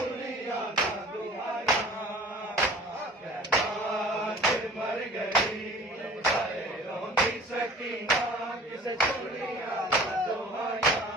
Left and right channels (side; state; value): both; normal; correlation 0.46